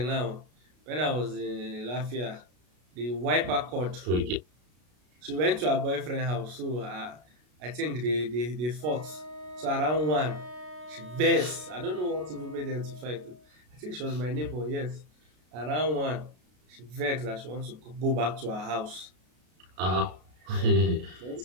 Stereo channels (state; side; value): late; left; 33 ms